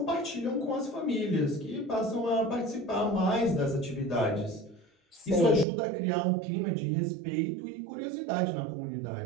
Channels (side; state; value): left; drops out; at 5.7 s